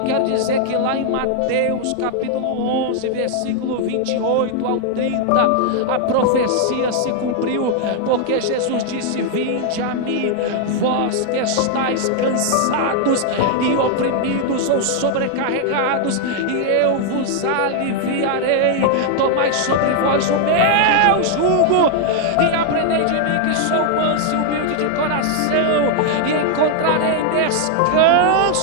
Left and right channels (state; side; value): different; both; correlation 0.00